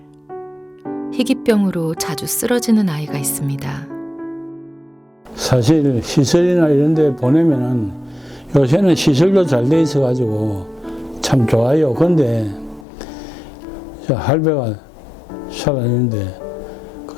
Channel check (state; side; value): drops out; right; at 12.9 s